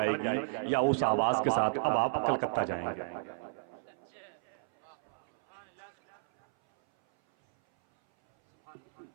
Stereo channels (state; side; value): silent; left; 56 dB below the other